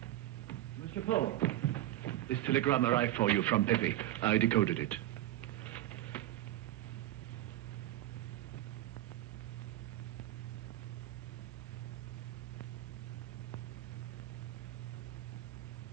This telegram arrived for you from Pepe. I decoded it.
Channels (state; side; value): quieter; left; 14.6 dB